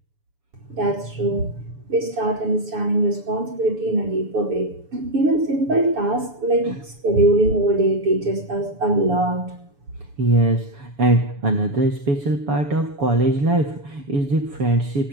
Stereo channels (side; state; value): left; late; 7.0 ms